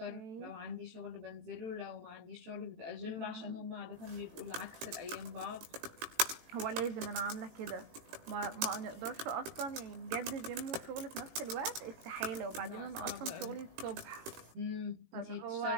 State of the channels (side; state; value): left; late; 18 ms